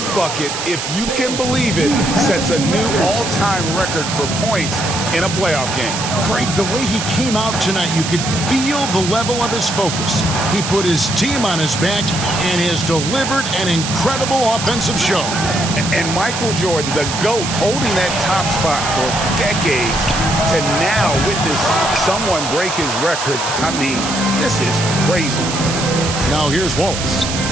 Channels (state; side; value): noise; right; hiss, 5 dB below the sound